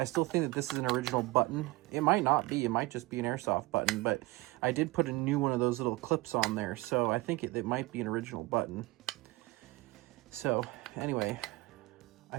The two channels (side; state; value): left; quieter; 21.4 dB